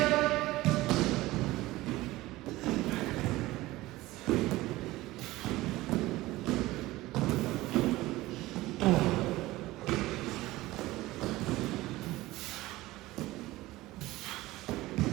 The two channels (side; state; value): left; quieter; 18.3 dB